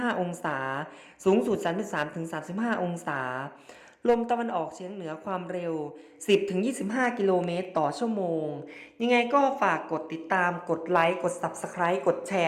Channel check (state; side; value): identical; both; correlation 1.00